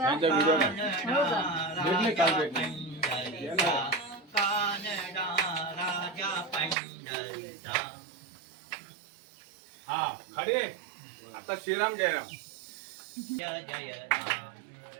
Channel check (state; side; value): drops out; left; at 6.8 s